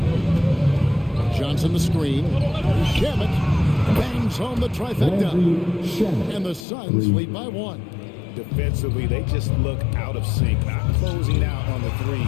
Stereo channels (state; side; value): drops out; right; at 6.7 s